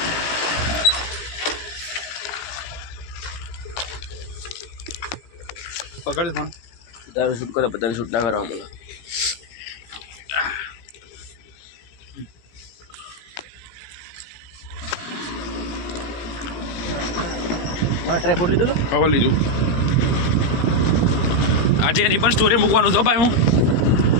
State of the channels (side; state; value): right; late; 17 ms